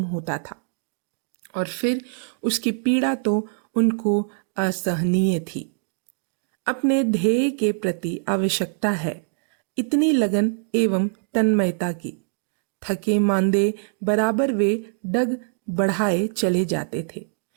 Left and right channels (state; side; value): silent; left; digital silence